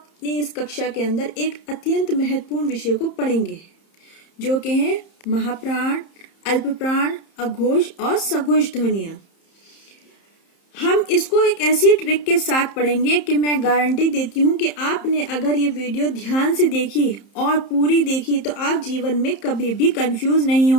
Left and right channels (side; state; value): right; late; 30 ms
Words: इस कक्षा के अंदर एक अत्यंत महत्वपूर्ण विषय को पढ़ेंगे जो कि है महाप्राण, अल्पप्राण, अघोष और सघोष ध्वनियां। हम इसको एक ऐसी ट्रिक के साथ पढ़ेंगे कि मैं गारंटी देती हूँ कि आपने अगर ये वीडियो ध्यान से देखी और पूरी देखी तो आप जीवन में कभी भी कंफ्यूज नहीं